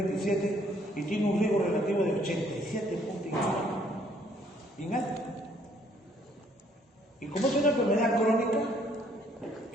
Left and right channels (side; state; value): both; normal; correlation 0.64